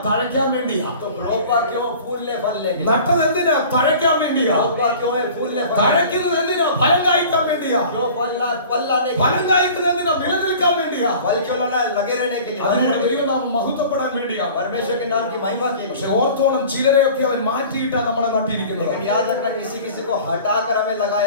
തഴയ്ക്കാൻ വേണ്ടിയാ. तो रोपा क्यों? फूलने फल लेंगे। നട്ടത് എന്തിനാ? തഴയ്ക്കാൻ വേണ്ടിയാ. रोपा क्यों है? फूलने फल। തഴയ്ക്കുന്നത് എന്തിനാ? ഫലം കായ്ക്കാൻ വേണ്ടിയാ. വേണ്ടിയാ? क्यों फल लाने के लिए? ഫലം കായ്ക്കുന്നതിനാ, നിലനിൽക്കാൻ വേണ്ടിയാ. फल क्यों लाना है? लगे रहने के लिए. അതിലൂടെ ദൈവനാമം മഹത്വപ്പെടാൻ വേണ്ടിയാ. परमेश्वर के नाम की महिमा के പക്ഷെ लिए. ഓർത്തോണം, ചിലരെയൊക്കെ അവൻ മാറ്റിയിട്ടാ നമ്മളെ നട്ടിരിക്കുന്നത്. लेकिन याद रखना, किसी किसी को हटाकर हमें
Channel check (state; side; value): inverted; both; correlation -0.43